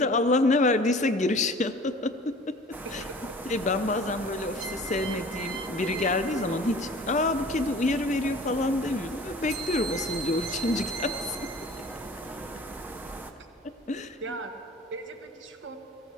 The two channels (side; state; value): both; normal; correlation 0.45